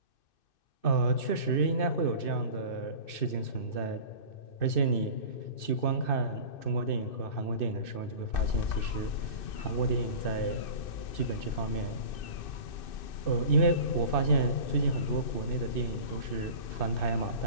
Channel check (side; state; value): right; late; 2.6 ms